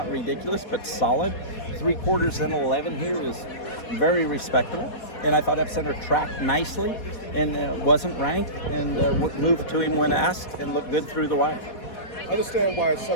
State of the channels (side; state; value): right; late; 4.2 ms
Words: ridiculous, but solid. 3/4 and 11 here is very respectable, and I thought Epicenter tracked nicely and wasn't ranked, and moved to him when asked and looked good through the wire. I understand why it's